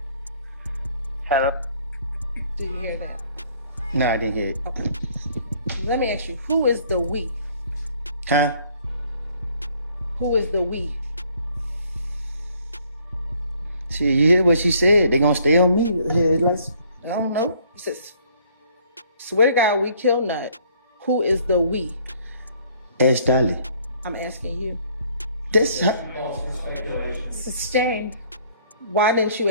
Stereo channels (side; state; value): both; inverted; correlation -0.61